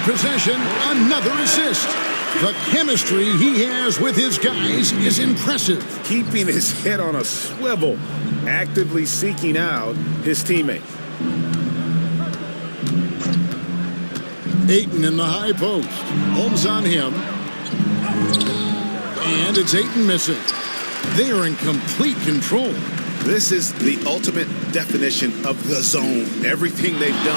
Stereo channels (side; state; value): both; inverted; correlation -1.00